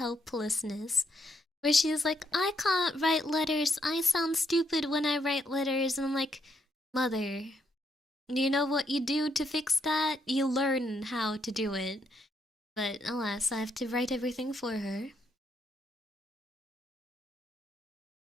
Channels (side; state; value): both; normal; correlation 0.76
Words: Where she's like, I can't write letters. I sound stupid when I write letters. And I'm like, Mother, you know what you do to fix that? You learn how to do it. But alas, I have to write everything for her.